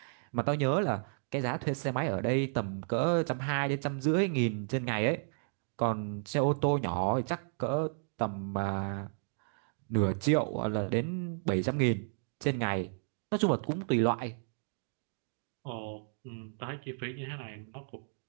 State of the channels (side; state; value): left; silent; digital silence